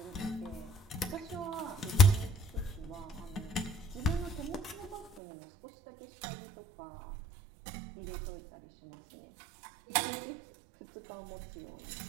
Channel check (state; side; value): drops out; left; at 5.2 s